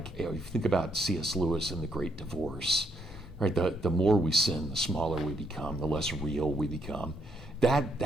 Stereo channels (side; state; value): both; normal; correlation 0.74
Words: if you think about C.S. Lewis in The Great Divorce, right? The more we sin, the smaller we become, the less real we become.